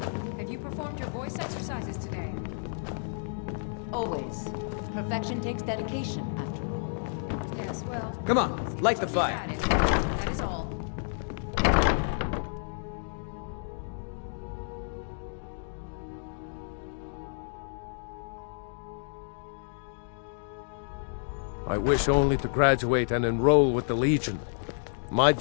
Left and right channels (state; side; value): silent; right; digital silence